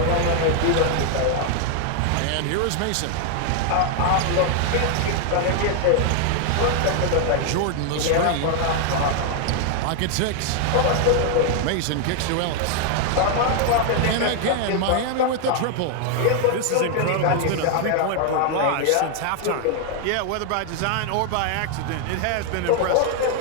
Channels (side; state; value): both; different; correlation 0.00